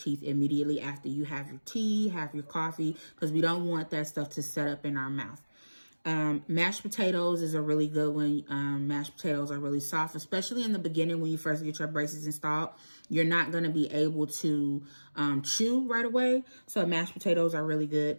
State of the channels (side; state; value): both; inverted; correlation -1.00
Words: immediately after you have your tea, have your coffee, because we don't want that stuff to set up in our mouth. Mashed potatoes is a really good one. Mashed potatoes are really soft, especially in the beginning when you first get your braces installed. You're not going to be able to chew right away. So mashed potatoes are really good.